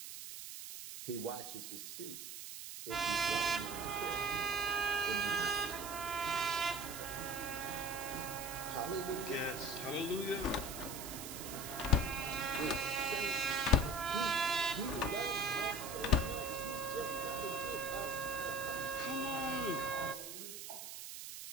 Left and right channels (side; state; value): right; noise; hiss, 9 dB below the sound